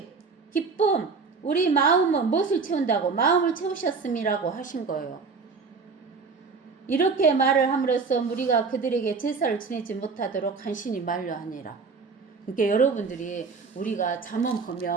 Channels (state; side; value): quieter; left; 4.7 dB